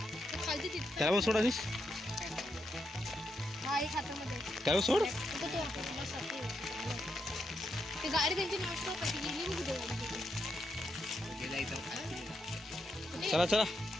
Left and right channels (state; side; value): normal; both; correlation 0.82